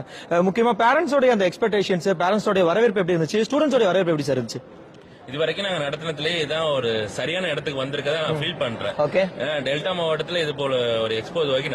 முக்கியமா பேரண்ட்ஸோட அந்த எக்ஸ்பெக்டேஷன்ஸ், பேரண்ட்ஸோட வரவேற்பு எப்படி இருந்துச்சு? ஸ்டூடெண்ட்ஸோட வரவேற்பு எப்படி சார் இருந்துச்சு? இது வரைக்கும் நாங்க நடத்தினதுலயே இதான் ஒரு சரியான இடத்துக்கு வந்திருக்கதா நான் ஃபீல் பண்றேன். டெல்டா மாவட்டத்துல இது போல ஒரு எக்ஸ்போ இது வரைக்கும்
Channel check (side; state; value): both; identical; correlation 1.00